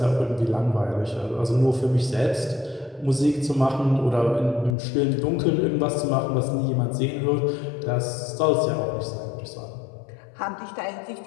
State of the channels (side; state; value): right; drops out; at 4.8 s